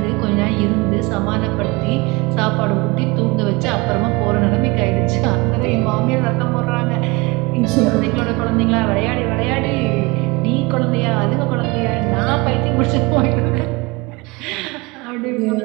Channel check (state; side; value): quieter; left; 24.6 dB